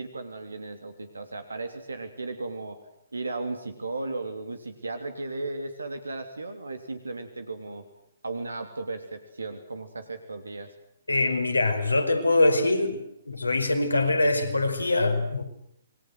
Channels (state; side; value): inverted; both; correlation -0.87